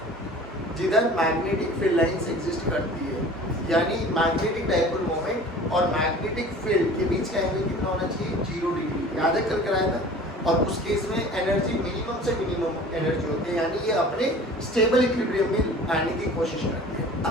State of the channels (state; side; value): normal; both; correlation 0.44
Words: जिधर मैग्नेटिक फील्ड लाइंस एग्जिस्ट करती है, यानी मैग्नेटिक डायपोल मोमेंट और मैग्नेटिक फील्ड के बीच का एंगल कितना होना चाहिए, 0 डिग्री। याद है कल कराया था। और उस केस में एनर्जी मिनिमम से मिनिमम एनर्जी होती है, यानी ये अपने स्टेबल इक्विलिब्रियम में आने की कोशिश करती है।